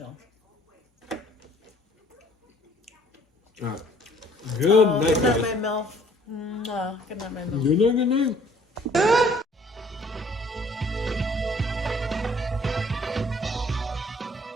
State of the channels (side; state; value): both; normal; correlation 0.58